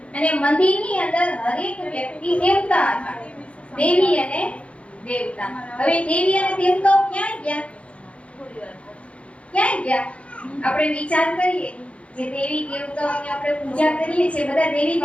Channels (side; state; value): right; late; 0.062 ms